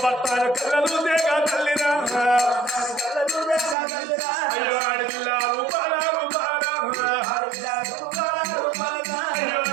భర్తలు కళ్ళలు దేగా తల్లిరా అయ్యో ఆడిల్ల రూపాల అయ్యో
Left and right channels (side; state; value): left; drops out; at 3.8 s